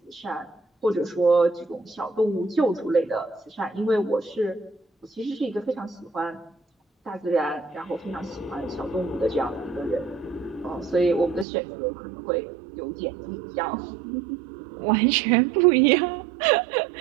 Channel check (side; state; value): left; drops out; at 11.5 s